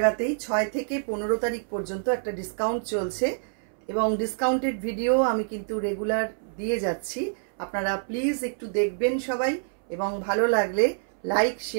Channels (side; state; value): left; silent; 60 dB below the other